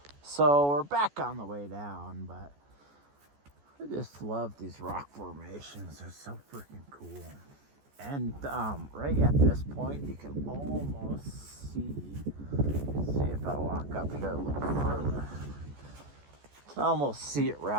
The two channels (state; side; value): late; left; 14 ms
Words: So we're back on the way down, but I just love these rock formations. They're so freaking cool. And right at this point, you can almost see if I walk up here a little further, you can almost see it